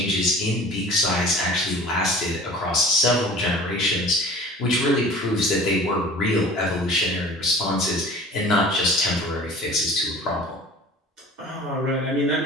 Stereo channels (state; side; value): normal; both; correlation 0.43